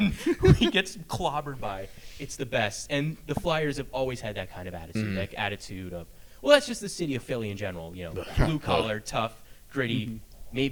who he gets clobbered by. It's the best. And the Flyers have always had that kind of attitude, like attitude of, well, that's just the city of Philly in general. Blue collar, tough, gritty,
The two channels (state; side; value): identical; both; correlation 1.00